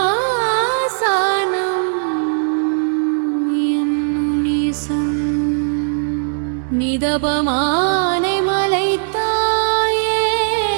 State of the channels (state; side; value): silent; left; 64 dB below the other